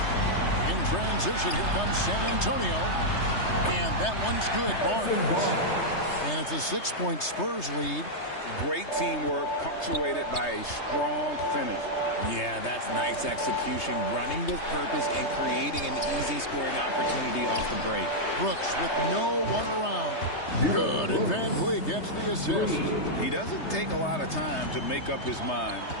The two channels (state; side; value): late; right; 3.3 ms